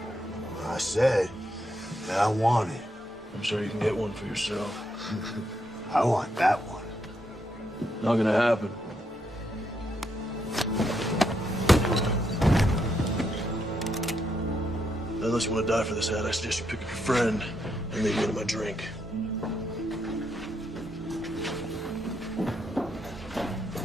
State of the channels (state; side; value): normal; both; correlation 0.79